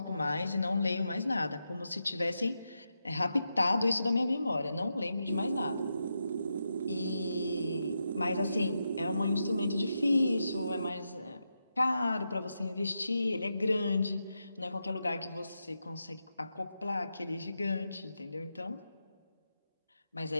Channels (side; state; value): both; inverted; correlation -0.86